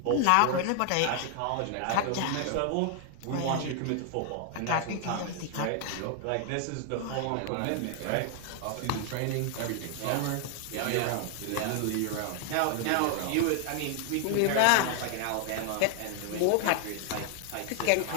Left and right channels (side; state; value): both; different; correlation 0.00